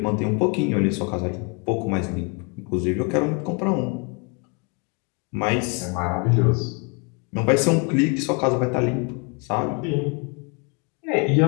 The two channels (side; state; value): right; quieter; 33.9 dB